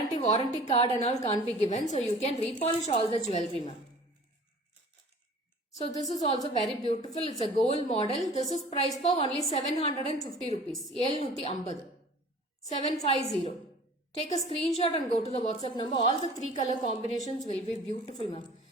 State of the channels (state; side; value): normal; both; correlation 0.46